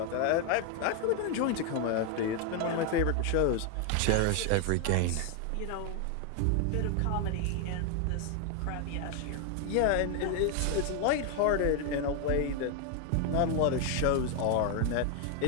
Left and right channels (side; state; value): both; different; correlation 0.00